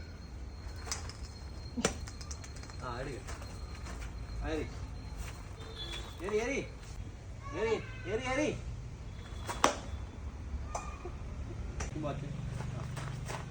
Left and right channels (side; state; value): both; identical; correlation 1.00